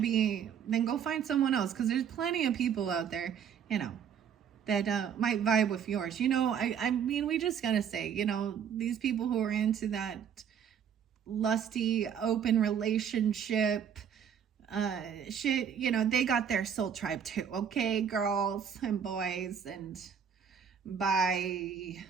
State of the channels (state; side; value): quieter; left; 7.9 dB